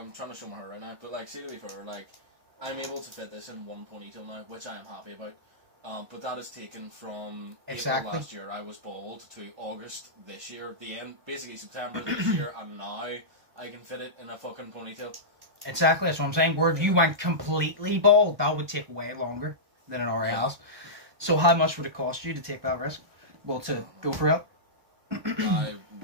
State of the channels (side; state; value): left; late; 1.2 ms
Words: trying to show my hair right now, but, like, see, to be fair, like, I'm able to fit this in one ponytail now, which I am happy about. But that is taken from April last year, I was bald, to August this year, the end, basically September this year, and now I can fit it in a fucking ponytail. Exactly, that's what I'm saying. Where if you went completely bald, that would take way longer than it already has. So how much would it cost you to take that risk? Well, to go for it? I